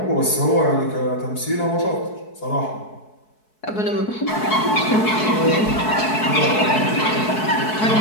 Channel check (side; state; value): right; late; 4.6 ms